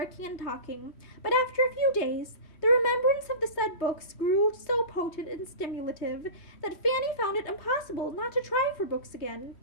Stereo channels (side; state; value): right; late; 3.2 ms